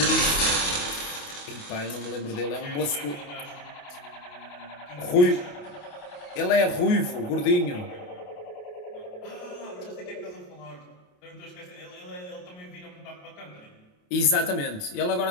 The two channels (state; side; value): late; right; 28 ms